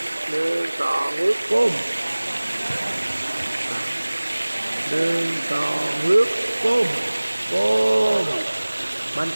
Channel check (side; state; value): both; inverted; correlation -1.00